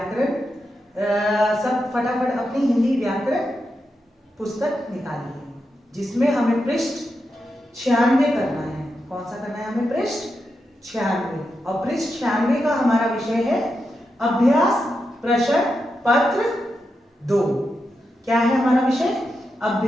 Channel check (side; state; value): both; normal; correlation 0.87